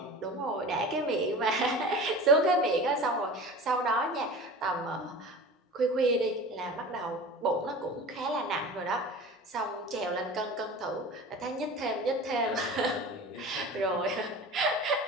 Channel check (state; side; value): normal; both; correlation 0.36